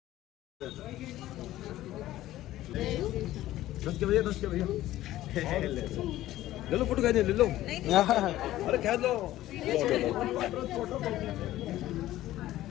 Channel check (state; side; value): quieter; right; 14.8 dB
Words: 10 के भैया, 10 के भैया। ले लो फोटो, खींच ले लो। अरे खींच लो।